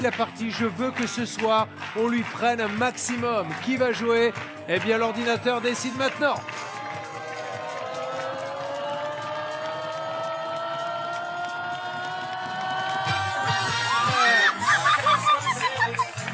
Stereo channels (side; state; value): both; identical; correlation 1.00